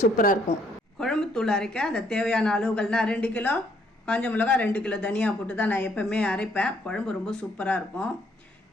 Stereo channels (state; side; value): normal; both; correlation 0.68